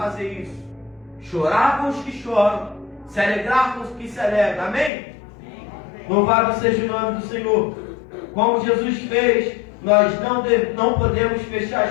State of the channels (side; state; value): right; drops out; at 4.9 s